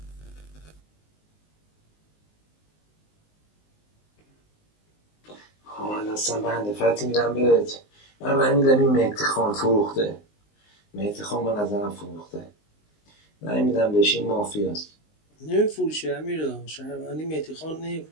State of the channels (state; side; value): late; right; 19 ms